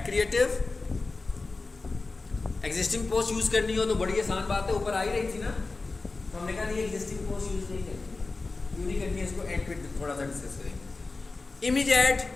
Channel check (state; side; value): quieter; right; 3.7 dB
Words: creative. Existing post use करनी हो तो बड़ी आसान बात है, ऊपर आ ही रही थी ना, तो हमने कहा नहीं एग्जिस्टिंग पोस्ट यूज नहीं करनी, क्यों नहीं करनी है, इसको ऐड पे थोड़ा सा डिस्कस करेंगे। इमेज ऐड,